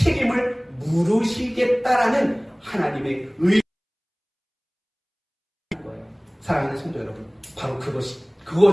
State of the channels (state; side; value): identical; both; correlation 1.00